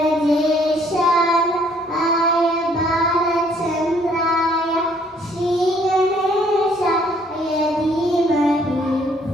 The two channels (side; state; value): both; normal; correlation 0.63